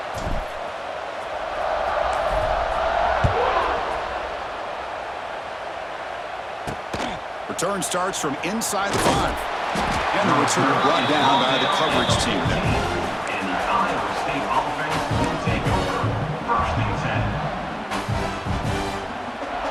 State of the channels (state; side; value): identical; both; correlation 1.00